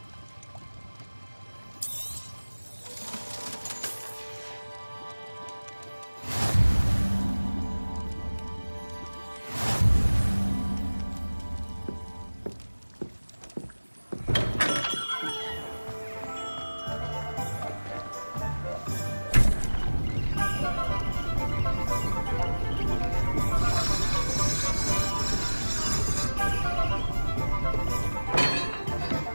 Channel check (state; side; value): inverted; both; correlation -1.00